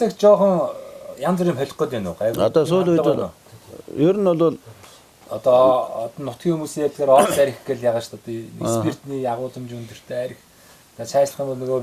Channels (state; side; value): identical; both; correlation 1.00